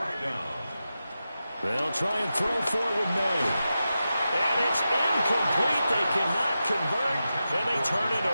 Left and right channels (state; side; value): inverted; both; correlation -0.91